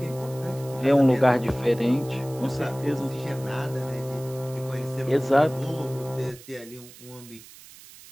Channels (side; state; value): right; noise; hiss, 19 dB below the sound